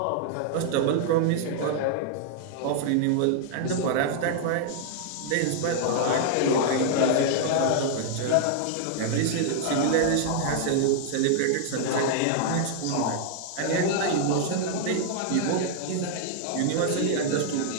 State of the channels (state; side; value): different; both; correlation -0.01